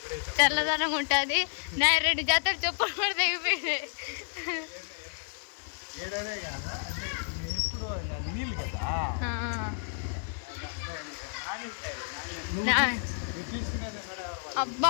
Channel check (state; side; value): silent; right; digital silence